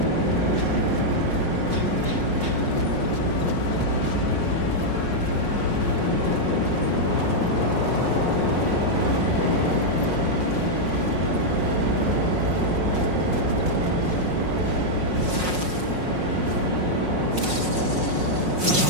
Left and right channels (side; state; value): left; late; 5.5 ms